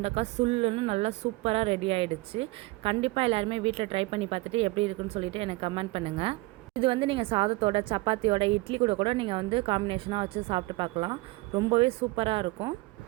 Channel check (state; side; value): quieter; left; 22.2 dB